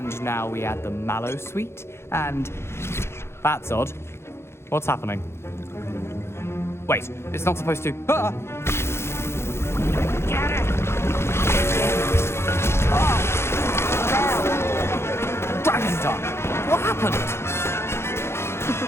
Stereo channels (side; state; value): right; late; 0.12 ms